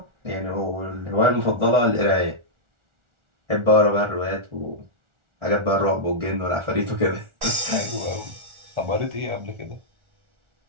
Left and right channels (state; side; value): late; left; 1.4 ms